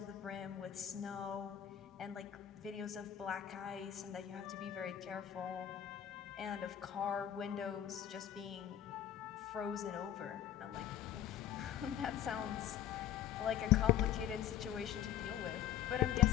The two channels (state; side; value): quieter; right; 10.8 dB